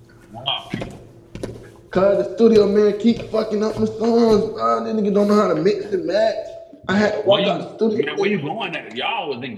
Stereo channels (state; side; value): identical; both; correlation 1.00